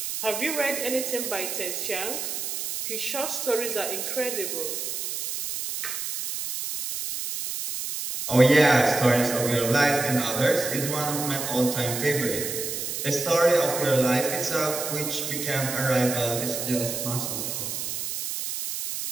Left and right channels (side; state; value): right; noise; hiss, 4 dB below the sound